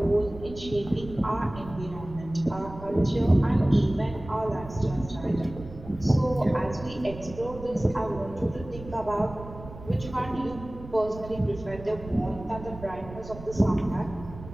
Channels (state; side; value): noise; right; rumble, 14 dB below the sound